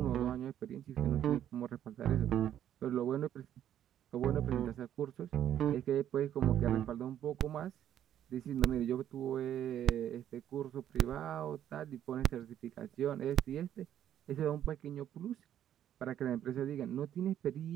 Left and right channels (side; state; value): left; quieter; 10.7 dB